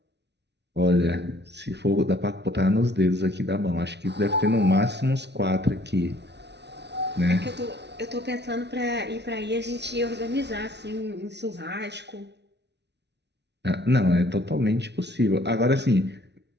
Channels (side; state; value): left; late; 0.50 ms